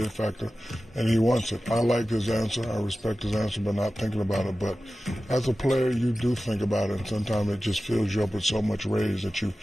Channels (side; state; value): both; normal; correlation 0.95